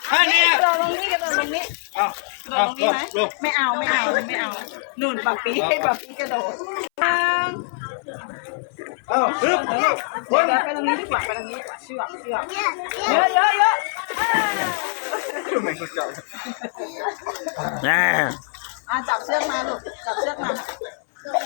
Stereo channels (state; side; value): silent; right; 62 dB below the other